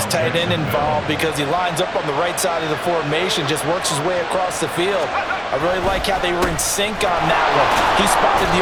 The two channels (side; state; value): both; identical; correlation 1.00